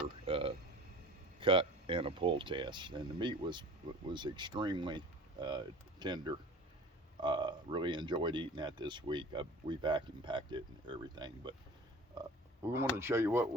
cut and a pull test, and the meat was extremely tender. Really enjoyed eating that this week. We vacuum packed it and everything, but we wanted to show you what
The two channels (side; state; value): both; normal; correlation 0.42